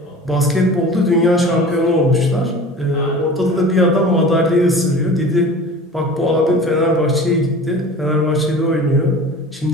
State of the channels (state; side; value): normal; both; correlation 0.40